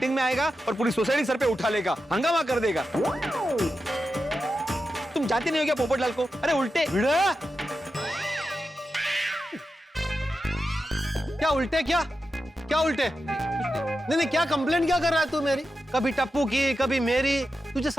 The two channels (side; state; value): both; normal; correlation 0.90